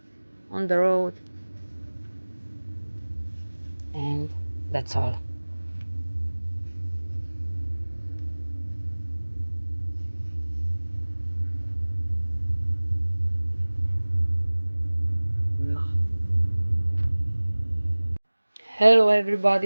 on the road, and that's all. Hello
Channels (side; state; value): both; inverted; correlation -1.00